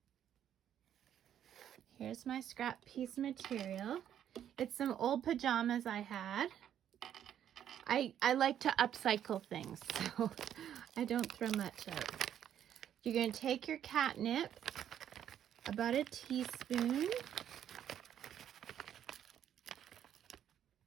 Here's my scrap piece of material. It's some old pajamas I had. I like to upcycle things, so I don't throw much out. You're going to take your catnip, about a teaspoon.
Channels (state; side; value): quieter; left; 10.1 dB